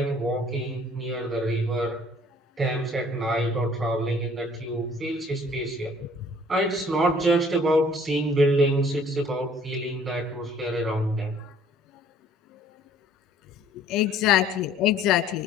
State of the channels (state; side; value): normal; both; correlation 0.56